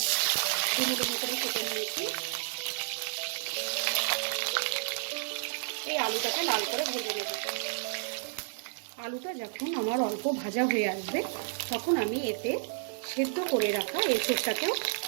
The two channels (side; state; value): left; silent; digital silence